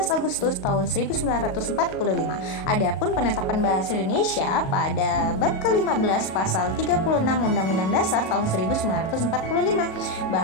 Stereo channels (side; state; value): right; late; 38 ms